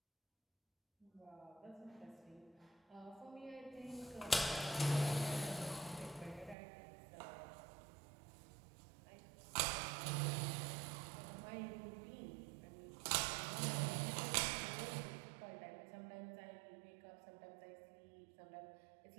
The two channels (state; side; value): drops out; left; at 6.6 s